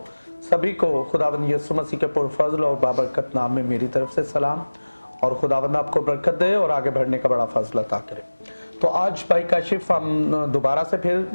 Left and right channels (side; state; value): both; inverted; correlation -1.00